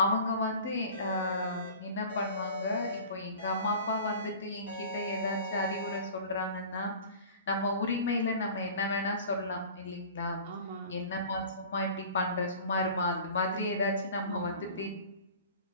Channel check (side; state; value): both; inverted; correlation -0.42